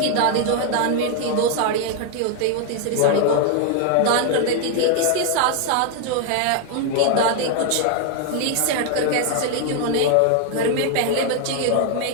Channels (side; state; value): both; different; correlation 0.00